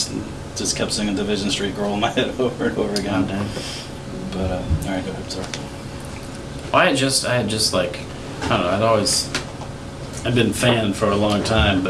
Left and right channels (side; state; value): both; identical; correlation 1.00